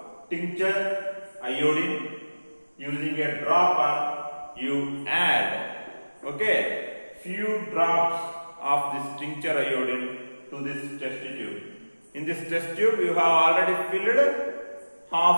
tincture iodine. Using a dropper you add, okay, few drops of this tincture iodine to this test tube. In this test tube you have already filled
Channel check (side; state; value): both; inverted; correlation -1.00